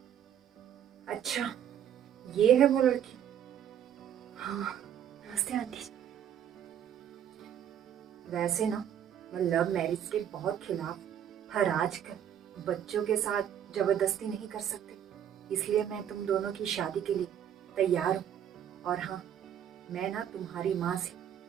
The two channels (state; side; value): quieter; left; 9.7 dB